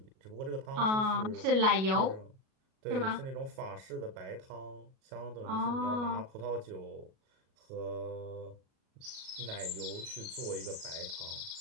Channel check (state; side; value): late; left; 37 ms